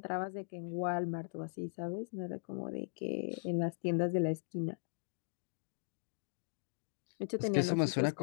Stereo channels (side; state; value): right; silent; digital silence